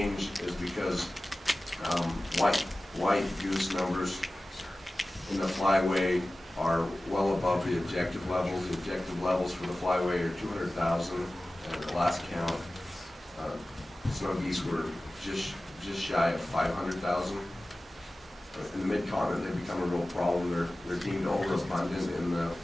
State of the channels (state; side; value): normal; both; correlation 0.96